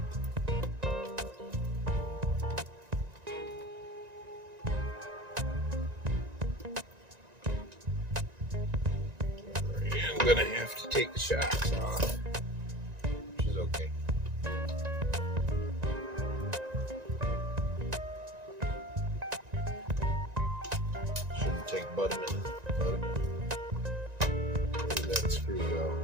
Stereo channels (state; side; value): late; left; 1.9 ms